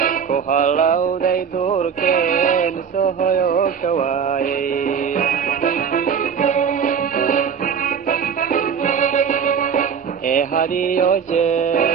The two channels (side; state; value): left; quieter; 7.0 dB